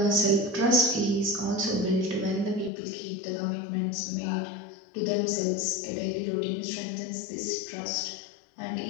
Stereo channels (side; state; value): right; drops out; at 2.7 s